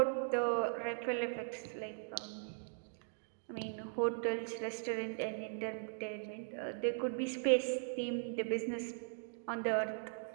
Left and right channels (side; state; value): left; silent; digital silence